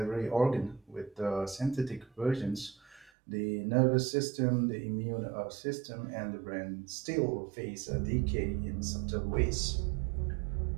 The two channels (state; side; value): drops out; left; at 3.1 s